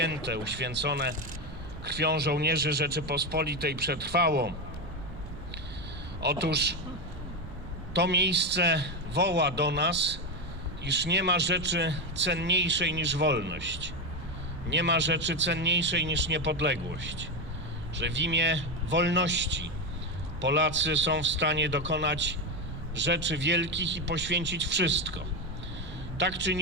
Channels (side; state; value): right; noise; rumble, 13 dB below the sound